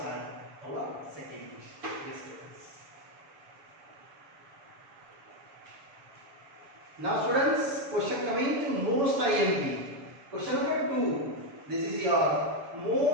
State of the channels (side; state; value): left; late; 7.1 ms